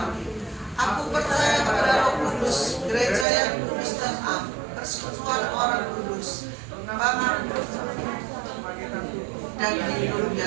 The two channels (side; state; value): left; drops out; at 3.2 s